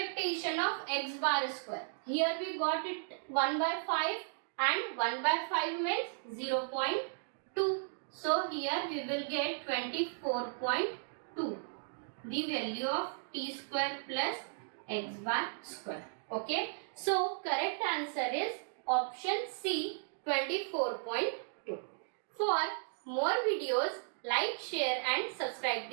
of x bar square. Here we got it 1 by 5, and 1 by 5 means 0.2. So here we will get 24.2, the value of t square plus x bar square. Okay. So correct answer is option C, 24.2. For more videos, like, share and subscribe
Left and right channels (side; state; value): left; silent; digital silence